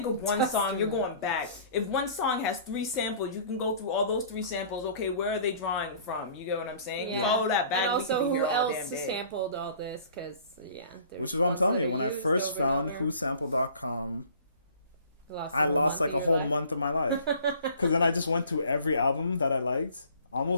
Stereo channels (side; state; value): both; inverted; correlation -0.50